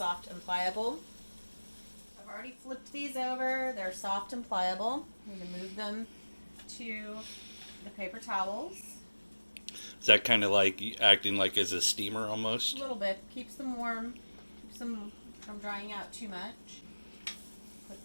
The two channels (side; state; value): both; inverted; correlation -1.00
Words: and pliable. I've already flipped these over. They're soft and pliable. I'm going to move them to the paper towels. Is that kind of like acting like as a steamer A almost? little bit. Keeps them warm. Keeps them from drying out too much. Put